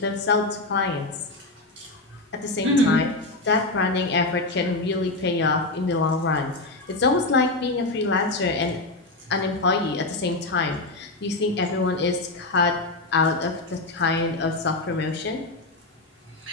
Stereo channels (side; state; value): right; quieter; 3.0 dB